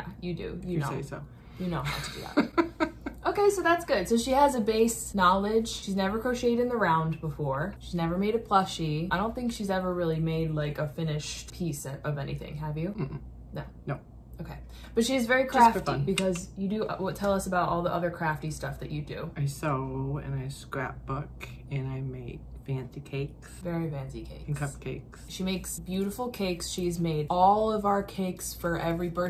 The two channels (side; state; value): both; identical; correlation 1.00